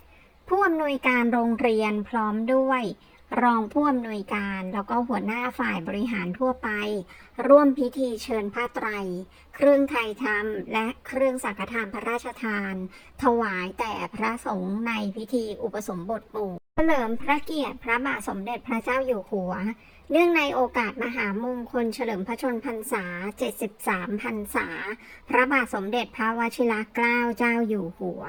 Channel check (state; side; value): identical; both; correlation 1.00